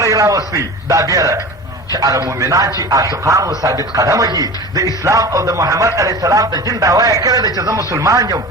راوستی دا بیره چې هغه مؤمنان چې عاشقان و ثابت قدمه دي د اسلام او د محمد علیه السلام د دین دعوا یې کړې ده چې زه مسلمان یم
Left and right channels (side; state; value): both; normal; correlation 0.35